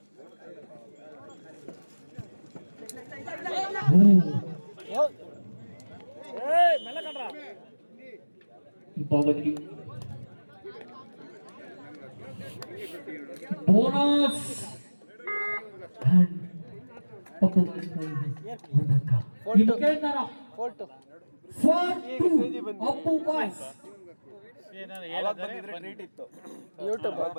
ಭಾಗದಲ್ಲಿ ಬೋನಸ್ ಅಪ್ಪು ಬಾಯ್ಸ್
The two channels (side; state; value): both; inverted; correlation -1.00